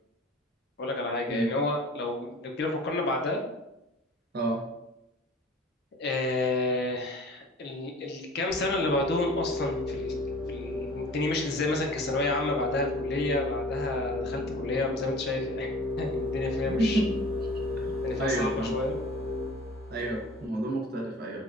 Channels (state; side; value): normal; both; correlation 0.43